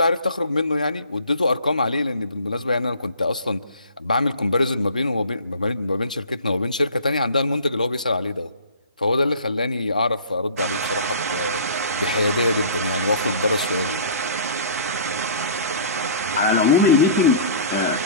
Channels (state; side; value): inverted; both; correlation -0.46